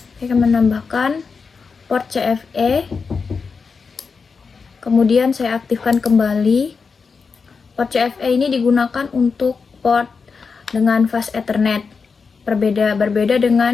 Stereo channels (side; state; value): right; quieter; 5.1 dB